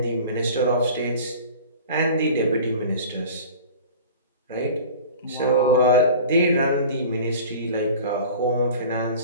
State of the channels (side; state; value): both; inverted; correlation -0.40